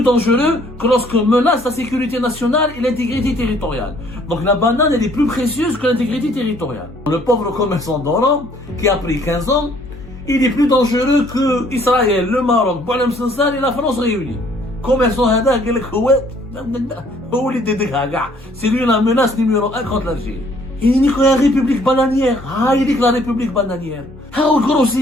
dangereux que lorsqu'on menace la sécurité nationale et l'intégrité territoriale. Donc la banane, elle est plus précieuse que l'intégrité territoriale. Le pauvre commerçant d'Oran, qui a pris 15 ans, il est plus dangereux que Israël, le Maroc, Boualem Sansal et la France réunis. Commerçant هذا قال لك هو اللي يديرها كاع c'est lui la menace numéro 1 contre l'Algérie. Il dit que la république bananière, il dit que la république bananière هاو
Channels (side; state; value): both; normal; correlation 0.61